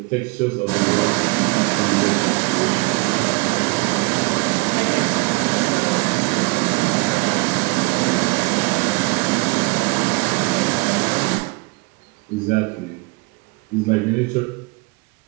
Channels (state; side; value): quieter; left; 26.1 dB